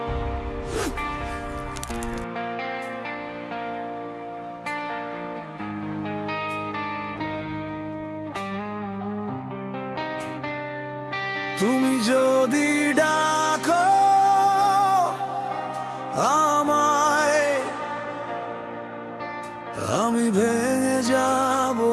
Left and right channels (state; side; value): identical; both; correlation 1.00